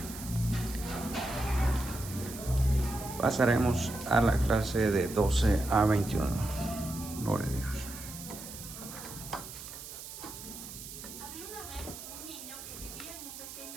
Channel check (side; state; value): right; noise; hiss, 12 dB below the sound